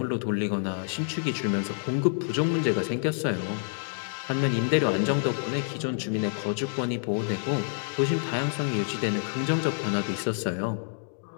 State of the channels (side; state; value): right; silent; digital silence